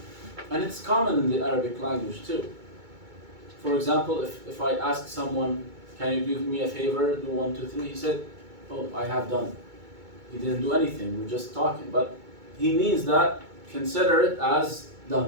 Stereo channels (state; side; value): late; left; 2.2 ms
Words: And it's common in the Arabic language too. For example, if I ask someone, can you do me a favor, do 1, 2, 3, he said, oh, I have done. He didn't do anything, we're just talking. But he means that, consider it as